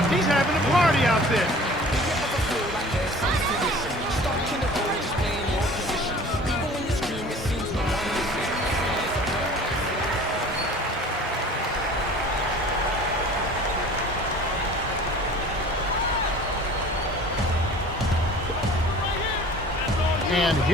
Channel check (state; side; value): normal; both; correlation 0.45